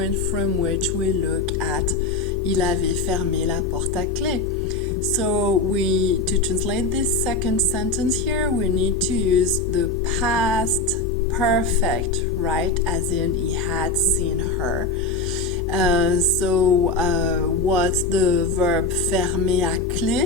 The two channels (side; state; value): right; quieter; 3.5 dB